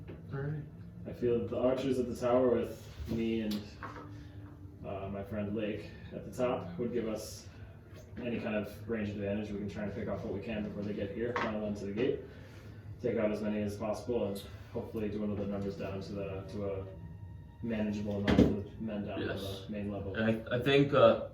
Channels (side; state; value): both; identical; correlation 1.00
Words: Alright. I feel that the archers at the tower with me and my friend Lake at the top would give us any kind of range advantage. We can try and pick off what we can before they get here, funnel them to the gate, take out as many as possible, and hopefully dwindle the numbers down to a manageable amount of the men down Yes. to the main level. And I think,